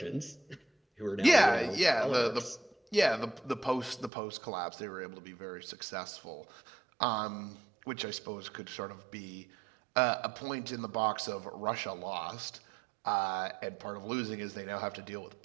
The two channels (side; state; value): left; drops out; at 4.1 s